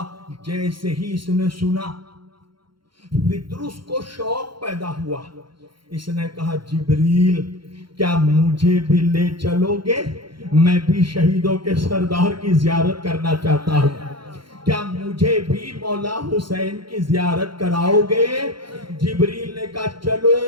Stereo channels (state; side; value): late; left; 0.73 ms